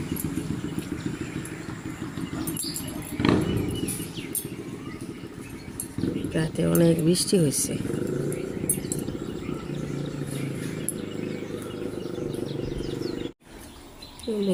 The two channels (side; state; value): both; identical; correlation 1.00